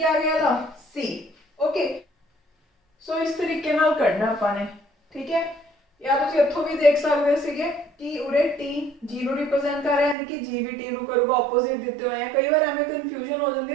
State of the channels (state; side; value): drops out; left; at 10.2 s